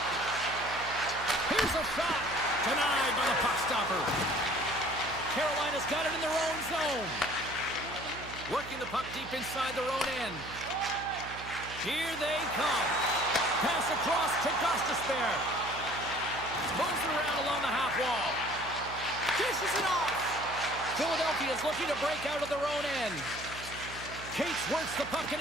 Here's a shot. Denied by the puck stopper. Carolina's got it in their own zone. Working the puck deep inside their own end. Here they come. Pass across to Gostisbehere. Moves it around along the half wall. Dishes it off. Philadelphia's looking to break out of their own end. Cates works the puck in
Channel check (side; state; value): right; noise; hum, 14 dB below the sound